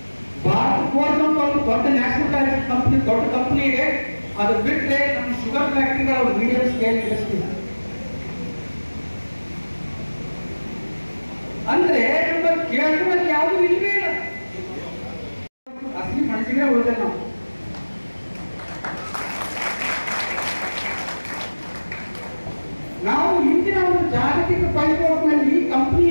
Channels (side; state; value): both; inverted; correlation -1.00